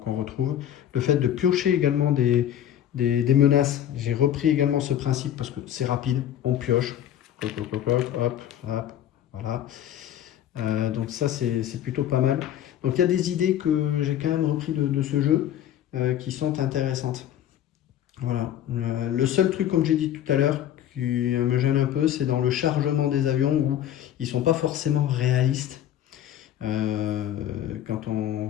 retrouve. Le fait de piocher également des des menaces. J'ai repris également ce principe parce que c'est rapide, on pioche. Hop, hop, hop, voilà. Donc ça, c'est plutôt pas mal. Donc il y a des idées que j'ai quand même repris de ce jeu qui sont intéressantes. Voilà. Le seul truc, comme j'ai dit tout à l'heure, qui me gêne un peu, c'est dans le chargement des avions où ils sont pas forcément réalistes. Quand on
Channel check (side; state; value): right; quieter; 11.0 dB